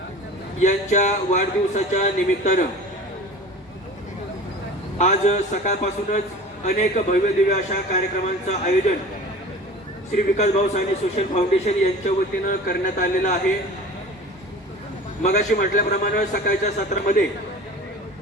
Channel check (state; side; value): normal; both; correlation 0.39